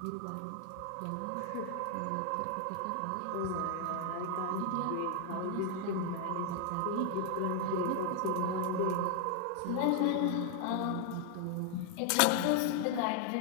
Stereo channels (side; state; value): both; different; correlation 0.00